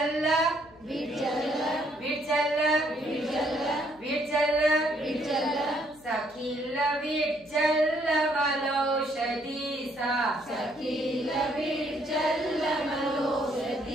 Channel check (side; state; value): left; noise; hum, 26 dB below the sound